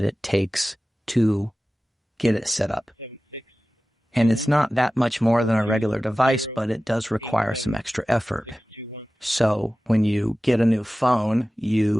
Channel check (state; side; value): normal; both; correlation 0.96